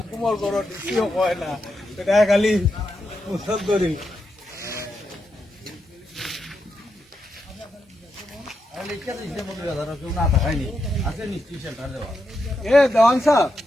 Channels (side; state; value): both; normal; correlation 0.85